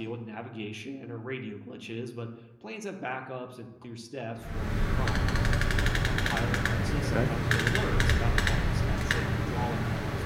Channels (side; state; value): both; identical; correlation 1.00